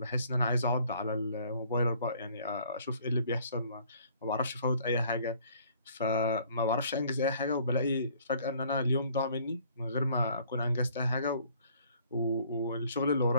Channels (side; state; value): both; inverted; correlation -0.58